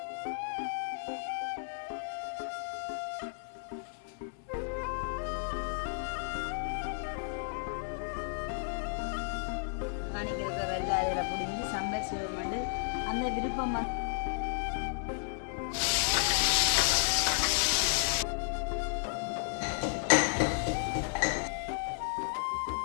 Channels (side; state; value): right; silent; 56 dB below the other